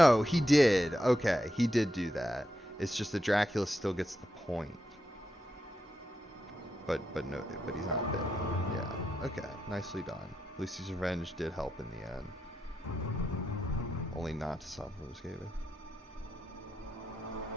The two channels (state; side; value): normal; both; correlation 0.85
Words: he did. Okay, he did do that. It's just that Dracula still gets the point. But no, but he's not bitten. Yeah, okay, nicely done. Lucy's Revenge did help in the end. Only not to stop him escaping.